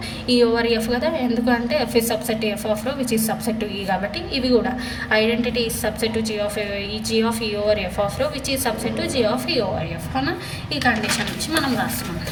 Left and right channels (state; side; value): identical; both; correlation 1.00